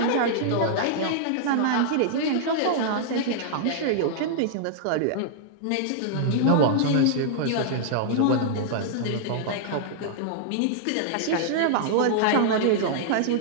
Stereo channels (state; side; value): different; both; correlation -0.01